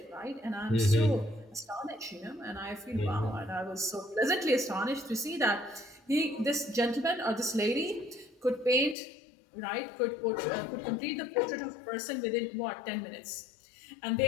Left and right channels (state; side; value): drops out; right; at 9.0 s